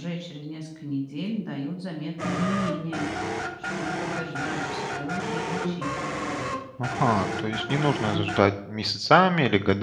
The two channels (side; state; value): both; identical; correlation 1.00